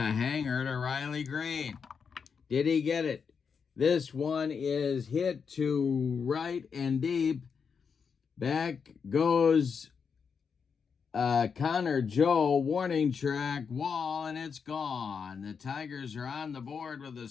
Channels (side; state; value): right; quieter; 6.1 dB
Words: hanger to Riley Green. Did he get it? This one is hit to right and deep. Back goes Connor Joe, warning track, wall, and it's gone. The Tigers are on the board with a